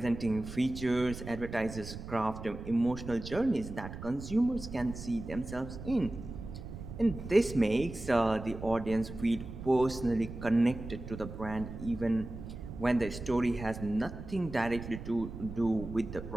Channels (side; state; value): right; noise; rumble, 10 dB below the sound